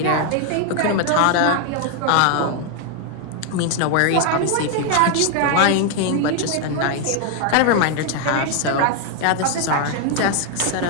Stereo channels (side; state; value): both; different; correlation 0.01